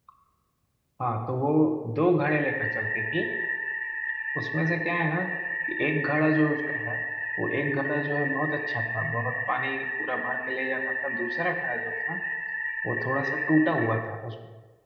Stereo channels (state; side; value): identical; both; correlation 1.00